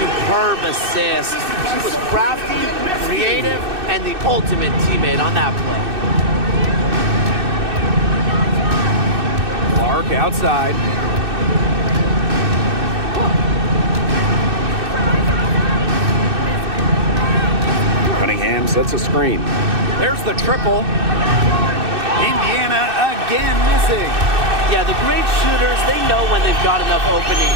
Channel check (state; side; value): late; left; 2.6 ms